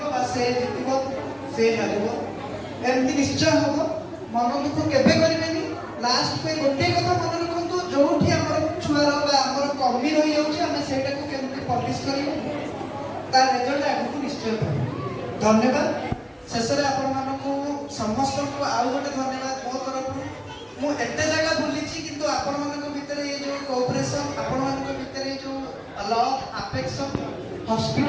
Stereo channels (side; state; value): both; identical; correlation 1.00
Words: ବା ସେ ଜିତିବ ସେ ହାରିବ, ଏମିତି ନିଶ୍ଚୟ ହବ। ମନ ଦୁଃଖ କେବେ କରିବେନି। ଲାଷ୍ଟ ପାଇଁ ଗୋଟିଏ କଥା ମନେ ରଖନ୍ତୁ, ଯୋଉଠି ଆମର ଛୁଆର ବା ଆମର କମି ରହିଯାଉଛି ଆମେ ସେଇଟାକୁ କେମିତି ପଲିଶ କରିବୁ, ତା ରେଜଲ୍ଟ ଆଗକୁ ନିଶ୍ଚୟ ପାଇବୁ। ଧନ୍ୟବାଦ। ଶେଷରେ ଆପଣମାନଙ୍କୁ ସମସ୍ତଙ୍କୁ ଆଉ ଗୋଟେ ଧନ୍ୟବାଦ ମୋ ତରଫରୁ। ମୁଁ ଏତେ ଜାଗା ବୁଲିଛି କିନ୍ତୁ ଆପଣମାନଙ୍କ ଭିତରେ ଏ ଯେଉଁ କୋଅପରେସନ୍, ଆପଣମାନଙ୍କ ଭିତରେ ଏ ଯେଉଁ ଲଭ୍ ଆଫେକ୍ସନ୍